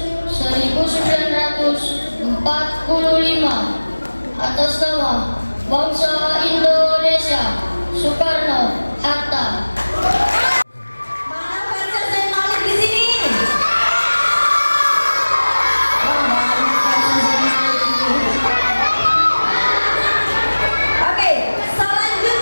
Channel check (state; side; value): inverted; both; correlation -1.00